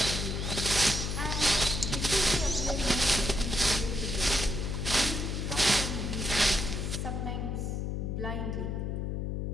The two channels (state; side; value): noise; left; hum, 1 dB below the sound